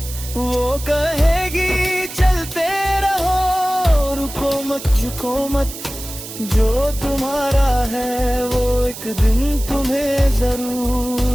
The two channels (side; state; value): right; noise; hiss, 12 dB below the sound